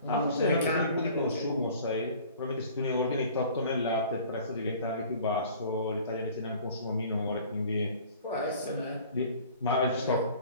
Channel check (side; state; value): both; inverted; correlation -0.48